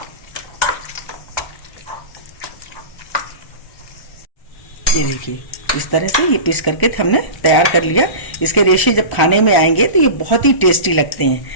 ये देखिए, इस तरह से ये पीस करके हमने तैयार कर लिया। इसके रेशे जब खाने में आएंगे तो ये बहुत ही टेस्टी लगते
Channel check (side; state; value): right; late; 1.0 ms